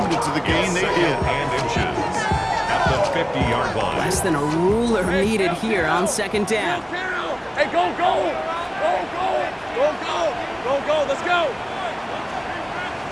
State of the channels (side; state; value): both; identical; correlation 1.00